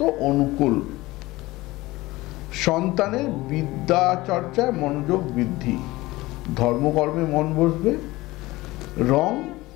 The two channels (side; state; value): right; quieter; 19.5 dB